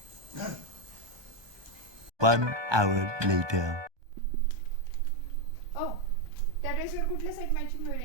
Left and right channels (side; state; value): left; late; 1.2 ms